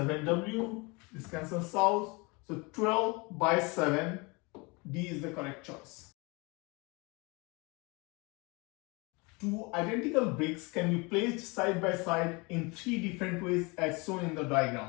this cancels out, so 12 by 7, D is the correct choice. Two identical bricks can be placed side by side in 3 different ways as shown in the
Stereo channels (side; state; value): right; quieter; 27.8 dB